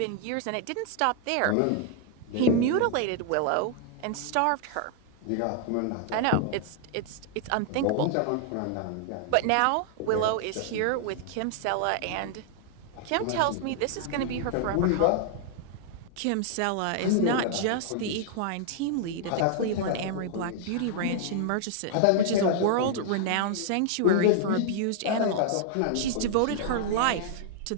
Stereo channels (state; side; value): different; both; correlation -0.01